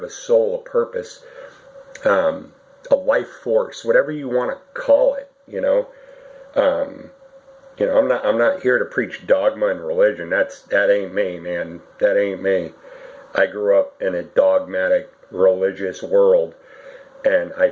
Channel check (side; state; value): both; identical; correlation 1.00